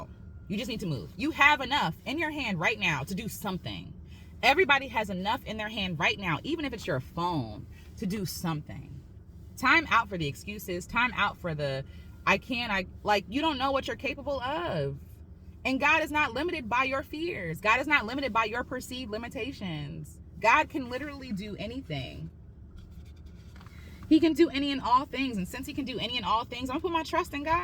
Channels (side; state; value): both; identical; correlation 1.00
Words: You just need to move. You have enough in your hand right now to do something. Everybody has enough in their hand right now, even if it's your phone, to do something. Time out for the excuses. Time out for the, you don't know what you're capable of. And God is not limited by your fears. God is not limited by your perceived limitations. God can literally do anything. He can do any and all things. And since he can do any and all things, I'm gonna put my trust in